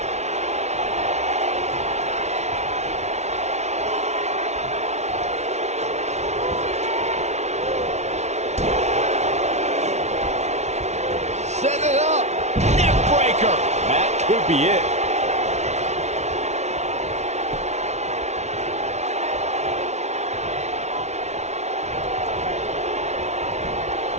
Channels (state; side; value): late; left; 0.32 ms